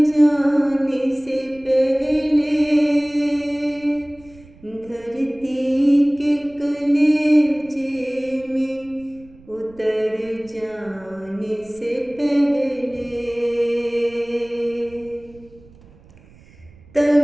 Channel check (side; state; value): right; noise; rumble, 25 dB below the sound